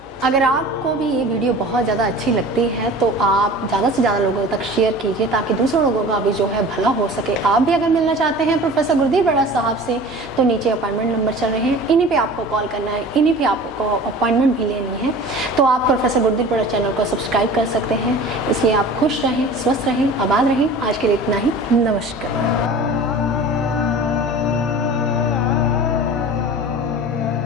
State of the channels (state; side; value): normal; both; correlation 0.40